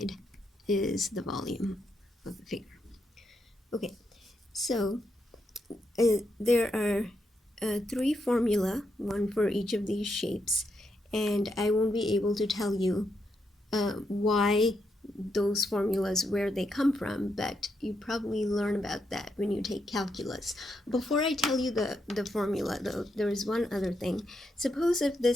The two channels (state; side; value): normal; both; correlation 0.81